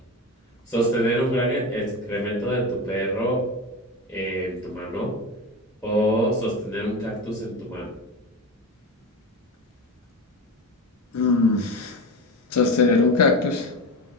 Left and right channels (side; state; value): both; normal; correlation 0.23